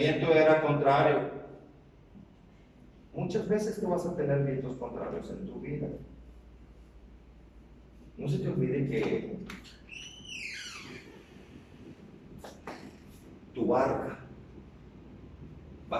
era contrario. Muchas veces tú vas a tener vientos contrarios en tu vida. No se te olvide que tu barca va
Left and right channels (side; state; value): both; identical; correlation 1.00